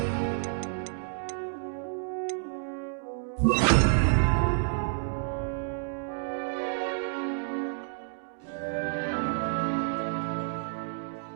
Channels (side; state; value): left; silent; digital silence